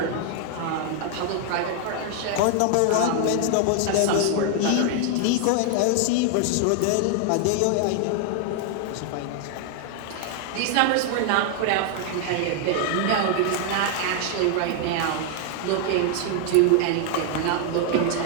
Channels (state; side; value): different; both; correlation 0.00